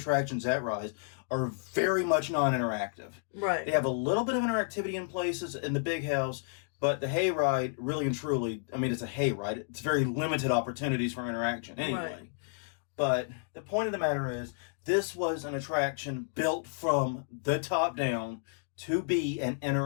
at Rise are very much non-interactive. Right. They have a little bit of interactivity in places in the big house, but the hayride, really and truly, I mean, it's a hayride. It's very limited opportunities for interaction anyway. Right. But the point of the matter is, this was an attraction built from the top down to be an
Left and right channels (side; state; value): right; silent; digital silence